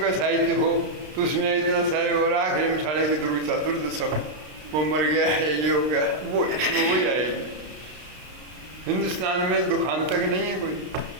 साहित्य हो तो उसमें इतना सारे और आखिरी में साढ़े की दुर्दशा में वो मर गया है, ये हो गया, वो इसमें वही आएगी। हिंदुस्तान में दुखांतक नहीं है कोई,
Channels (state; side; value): late; left; 33 ms